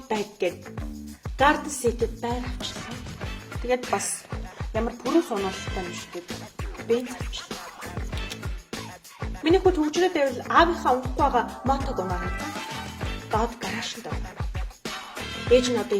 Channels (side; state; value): both; identical; correlation 1.00